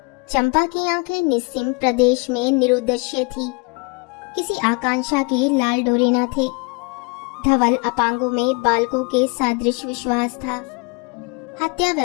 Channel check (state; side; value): quieter; right; 29.8 dB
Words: चंपा की आंखें निस्सीम प्रदेश में निरुद्देश्य थी। किसी आकांक्षा के लाल डोरे न थे। धवल अपांगों में बालकों के सदृश विश्वास था। हत्या